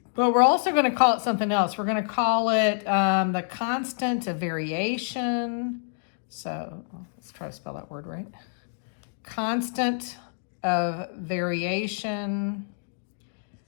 But we're also going to call it something else. We're going to call it the constant of variation. So let's try to spell that word right. Constant of variation.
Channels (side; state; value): right; silent; digital silence